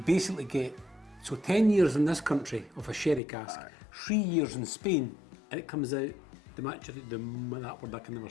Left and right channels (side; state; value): right; drops out; at 3.2 s